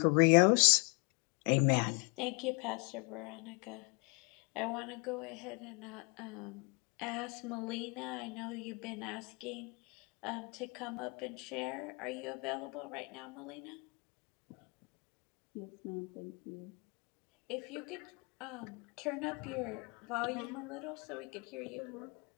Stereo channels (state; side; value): quieter; right; 32.4 dB